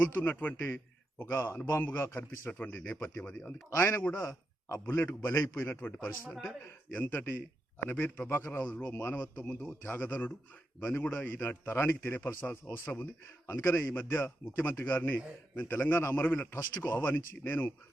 ఒక అనుభవంగా కనిపిస్తున్నటువంటి నేపథ్యం అది. అందుకే ఆయన కూడా ఆ బుల్లెట్కు బలైపోయినటువంటి పరిస్థితి. అంటే ఎంతటి అనబేరి ప్రభాకర్ రావులో మానవత్వం ముందు త్యాగధనుడు, ఇవన్నీ కూడా ఈనాటి తరానికి తెలియపరచాల్సిన అవసరం ఉంది. అందుకనే ఈ మధ్య ముఖ్యమంత్రి గారిని నేను తెలంగాణ అమరవీరుల ట్రస్టుకు ఆహ్వానించి, నేను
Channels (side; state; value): both; normal; correlation 0.85